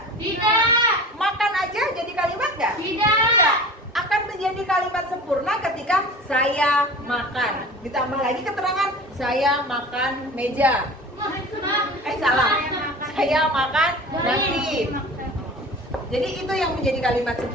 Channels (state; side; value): normal; both; correlation 0.38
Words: Tidak. Makan aja jadi kalimat nggak? Tidak. Akan menjadi kalimat sempurna ketika saya makan. Ditambah lagi keterangan saya makan meja. Salah. Saya makan nasi. Jadi itu yang menjadi kalimat